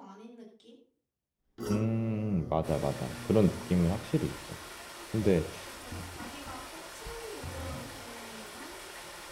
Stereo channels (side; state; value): both; identical; correlation 1.00